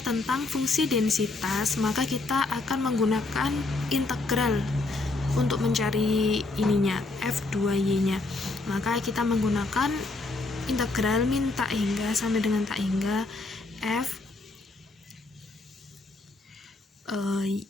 tentang fungsi densitas, maka kita akan menggunakan integral untuk mencari ininya, F2Y nya. Maka kita menggunakan integral min tak hingga sampai dengan tak hingga F Y,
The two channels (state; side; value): quieter; right; 3.3 dB